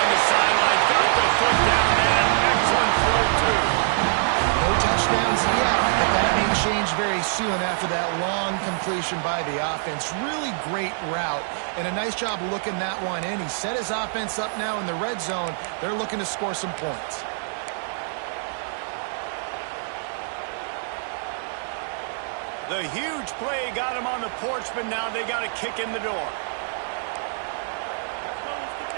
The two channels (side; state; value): left; silent; digital silence